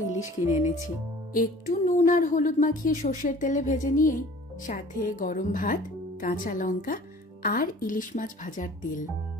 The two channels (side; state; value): both; normal; correlation 0.48